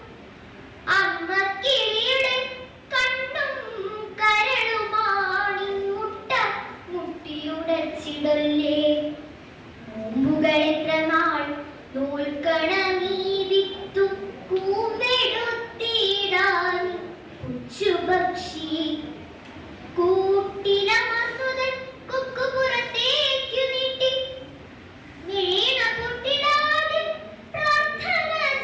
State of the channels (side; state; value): both; identical; correlation 1.00